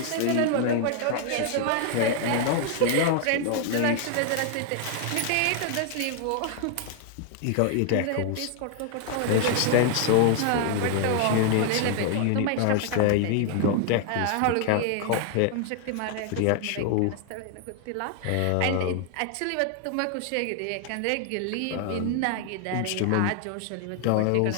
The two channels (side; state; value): both; different; correlation 0.00